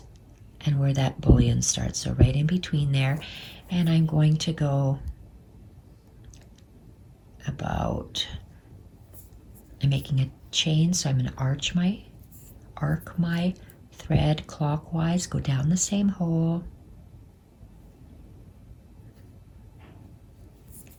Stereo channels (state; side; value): identical; both; correlation 1.00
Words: and where that bullion starts. So right in between there. And I'm going to go about, I'm making a chain, so I'm going to arc my thread clockwise, go down the same hole,